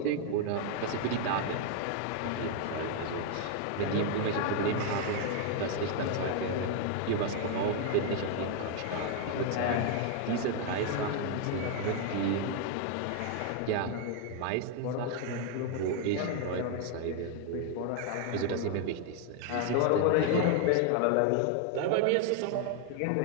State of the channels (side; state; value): both; different; correlation 0.00